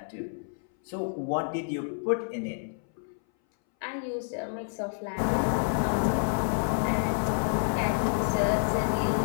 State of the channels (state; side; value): silent; right; 59 dB below the other